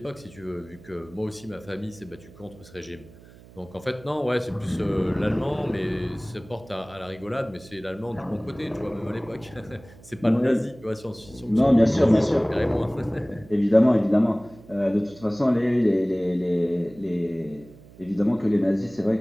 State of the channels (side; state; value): right; noise; hum, 22 dB below the sound